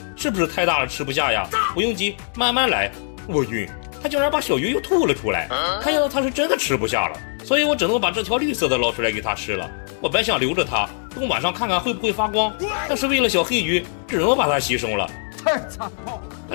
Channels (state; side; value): silent; right; digital silence